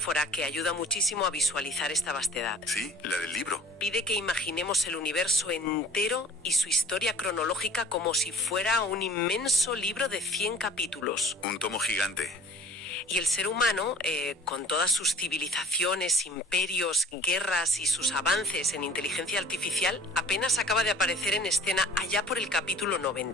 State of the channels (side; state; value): both; normal; correlation 0.47